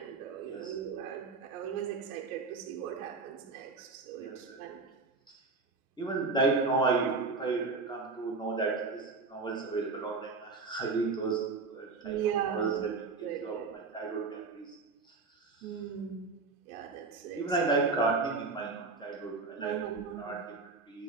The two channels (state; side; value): quieter; left; 4.2 dB